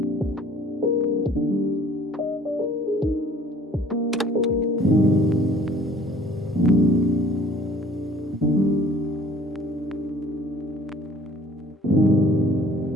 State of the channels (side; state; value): both; normal; correlation 0.55